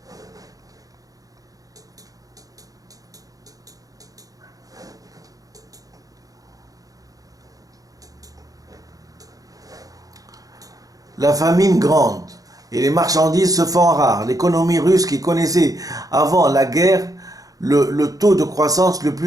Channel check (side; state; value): left; late; 0.17 ms